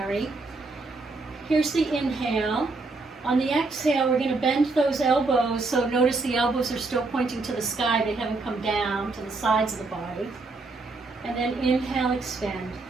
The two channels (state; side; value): quieter; left; 3.6 dB